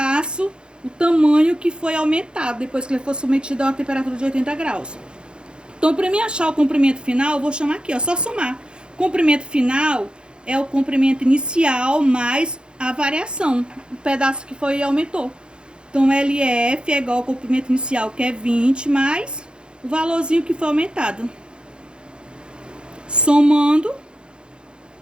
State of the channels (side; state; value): left; late; 0.051 ms